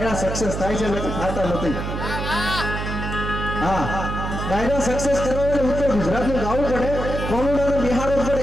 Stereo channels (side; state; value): right; noise; hum, 4 dB below the sound